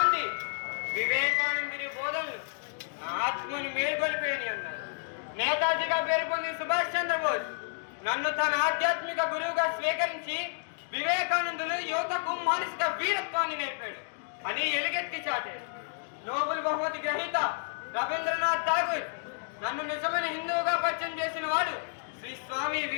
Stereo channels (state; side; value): silent; right; digital silence